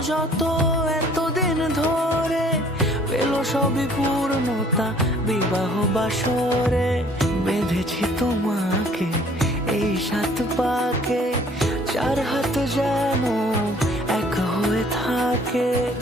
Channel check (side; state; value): both; normal; correlation 0.57